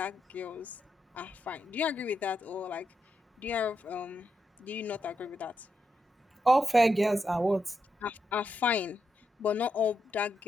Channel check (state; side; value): normal; both; correlation 0.84